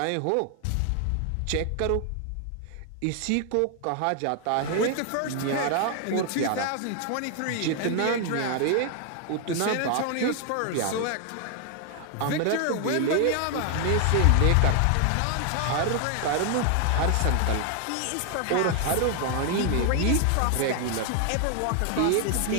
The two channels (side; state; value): both; different; correlation 0.00